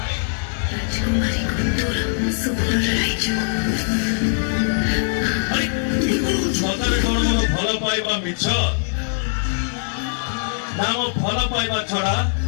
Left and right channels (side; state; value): right; silent; digital silence